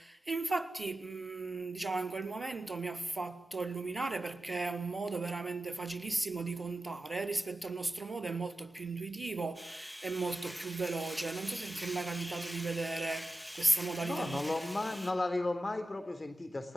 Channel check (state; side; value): normal; both; correlation 0.93